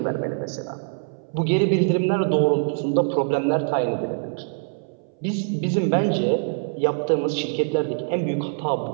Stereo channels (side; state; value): left; silent; 61 dB below the other